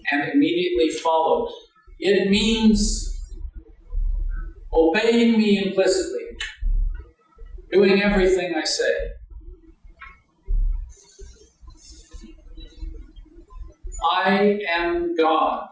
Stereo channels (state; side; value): identical; both; correlation 1.00